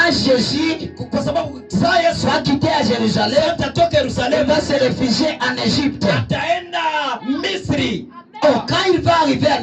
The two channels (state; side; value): identical; both; correlation 1.00